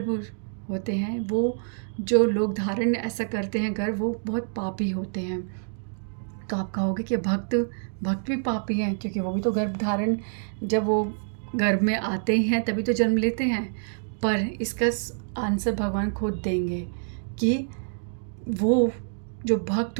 होते हैं, वो जो लोग धारण ऐसा करते हैं गर्भ, वो बहुत पापी होते हैं। तो आप कहोगे कि भक्त भी पापी हैं, क्योंकि वो भी तो गर्भ धारण, जब वो गर्भ में आते हैं तभी तो जन्म लेते हैं। पर इसका आंसर भगवान खुद देंगे कि वो जो भक्त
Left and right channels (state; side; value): silent; left; digital silence